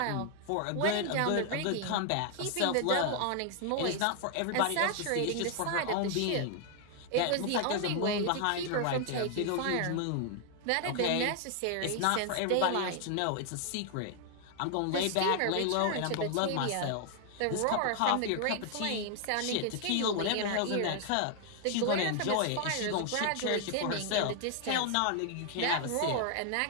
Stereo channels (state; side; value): different; both; correlation 0.00